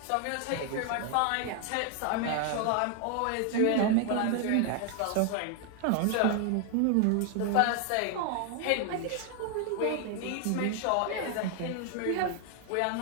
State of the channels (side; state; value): both; different; correlation 0.00